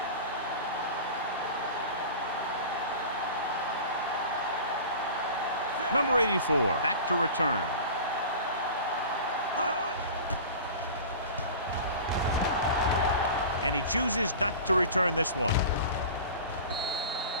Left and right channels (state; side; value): inverted; both; correlation -0.36